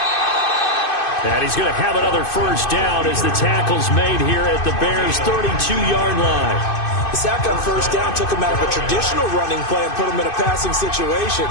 And he's going to have another first down as the tackle's made here at the Bears' 32-yard line. The sack on first down took him out of a traditional running play and put him in a passing situation,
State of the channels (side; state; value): right; late; 2.6 ms